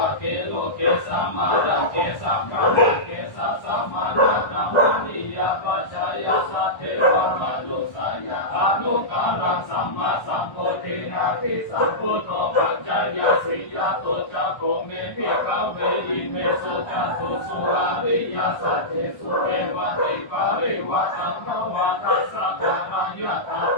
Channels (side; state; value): right; late; 1.3 ms